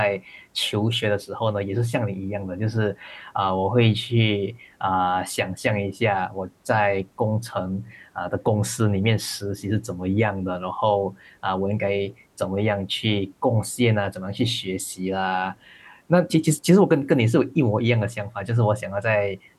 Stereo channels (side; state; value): both; identical; correlation 1.00